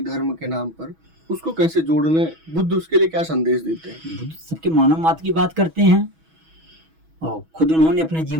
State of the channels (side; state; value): left; late; 6.2 ms